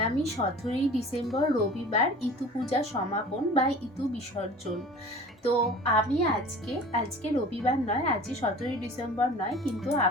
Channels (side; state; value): both; normal; correlation 0.42